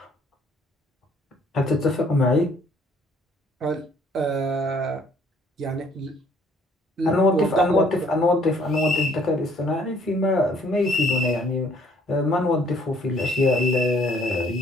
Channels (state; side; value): normal; both; correlation 0.61